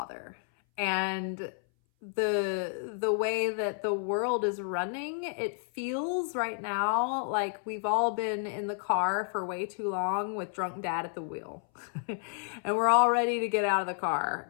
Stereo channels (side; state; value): right; silent; 57 dB below the other